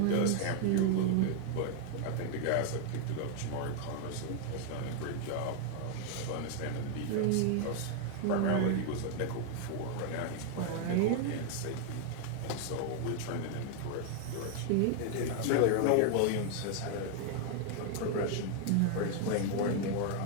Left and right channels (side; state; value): both; different; correlation 0.00